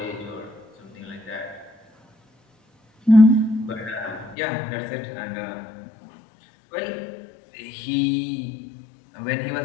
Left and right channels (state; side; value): drops out; right; at 4.4 s